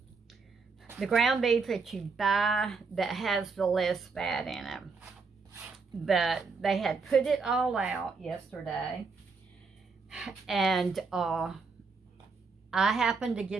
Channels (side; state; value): left; quieter; 4.7 dB